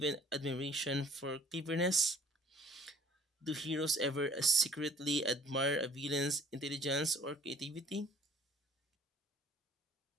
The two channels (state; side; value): normal; both; correlation 0.55